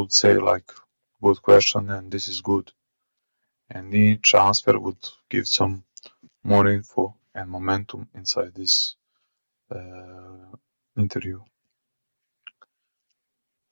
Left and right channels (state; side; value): inverted; both; correlation -1.00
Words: say like good question and this is good. And each answer would give some more info and momentum inside this interview.